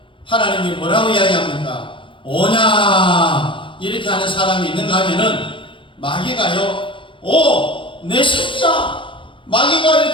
하나님이 뭐라고 이야기합니까? 오냐 이렇게 하는 사람이 있는가 하면은 마귀가요, 오, 내 새끼야. 마귀가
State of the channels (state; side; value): late; right; 0.25 ms